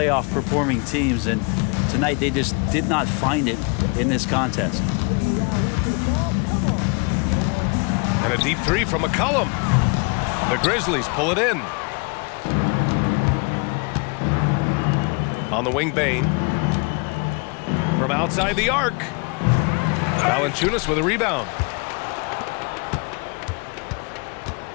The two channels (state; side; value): quieter; right; 33.0 dB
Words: performing teams, and tonight they just did not find it in this contest. And a deep 3 from McCollum. The Grizzlies pull it in. On the wing, Bane. From outside the arc. Valanciunas with a rebound.